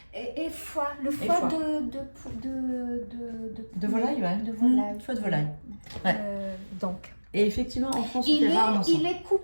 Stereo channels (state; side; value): inverted; both; correlation -1.00